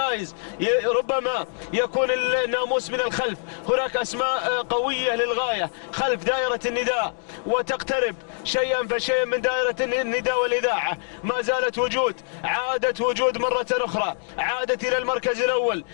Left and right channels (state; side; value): silent; right; digital silence